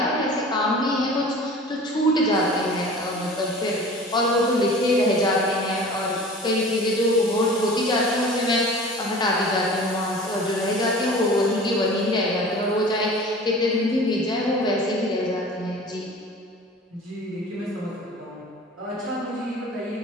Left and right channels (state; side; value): normal; both; correlation 0.41